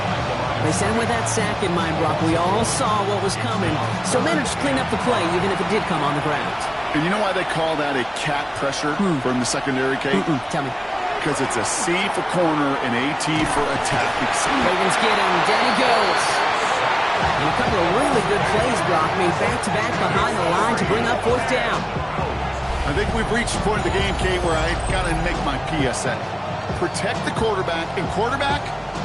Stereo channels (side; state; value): both; identical; correlation 1.00